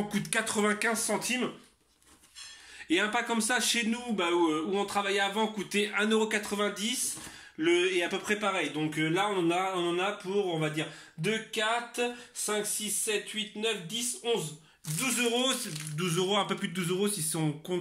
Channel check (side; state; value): both; identical; correlation 1.00